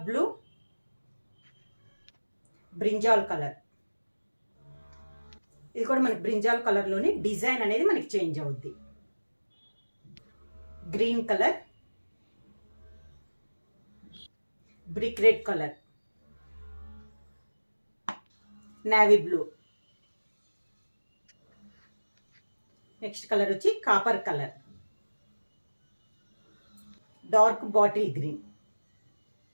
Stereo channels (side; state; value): both; inverted; correlation -1.00